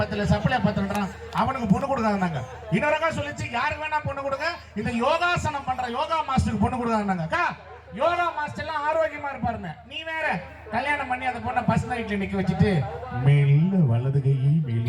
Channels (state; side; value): identical; both; correlation 1.00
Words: அவனுக்கு பொண்ணு கொடுக்காதாங்க. இன்னொரு அக்கா சொல்லிச்சு, யாருக்கு வேணா பொண்ணு கொடுங்க, இந்த யோகாசனம் பண்ற யோகா மாஸ்டருக்கு பொண்ணு கொடுக்காதாங்க. அக்கா, யோகா மாஸ்டர் எல்லாம் ஆரோக்கியமா இருப்பாருங்க, நீ வேற கல்யாணம் பண்ணி அந்த பொண்ணை பஸ் நைட்ல நிக்க வச்சுட்டு மெல்ல வலது கையை